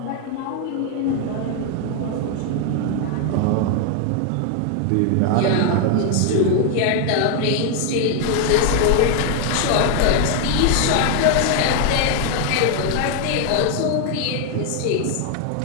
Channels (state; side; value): different; both; correlation 0.01